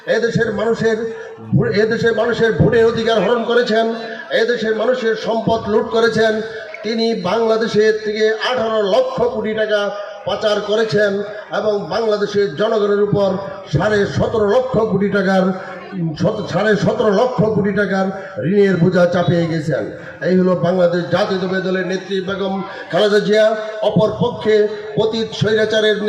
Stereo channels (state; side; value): identical; both; correlation 1.00